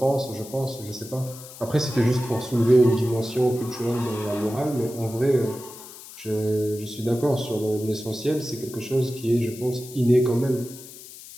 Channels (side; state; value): left; noise; hiss, 16 dB below the sound